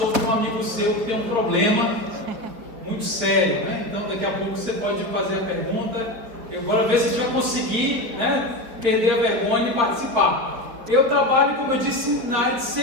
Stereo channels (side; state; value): left; late; 4.8 ms